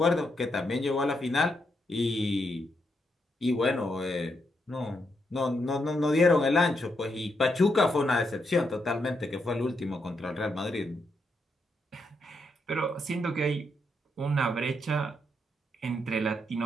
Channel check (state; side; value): normal; both; correlation 0.80